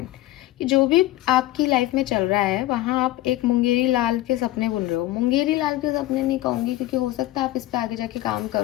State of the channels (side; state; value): right; quieter; 16.1 dB